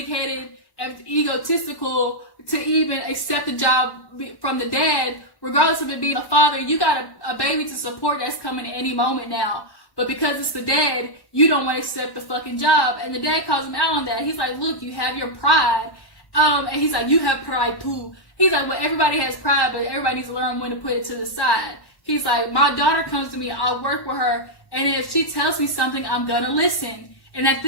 and egotistical to even accept a job from the dad, regardless of it being a father. You got a baby to support that's coming at any moment now. But because it's the dad, you don't want to accept the fucking job. And the dad calls him out on that. He's like, look, you have your pride. And he's like, you have pride too. He's like, well, everybody has pride, but everybody needs to learn when to put it to the side. He's like, my daughter comes to me, I'll work with her. And if she tells me something, I'm going to listen. And at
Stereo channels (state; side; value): late; right; 1.1 ms